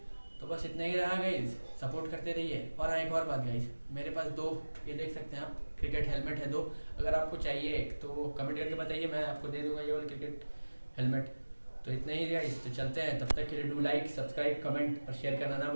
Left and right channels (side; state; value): both; inverted; correlation -1.00